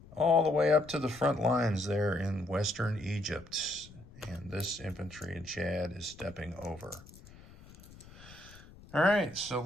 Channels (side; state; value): left; noise; rumble, 21 dB below the sound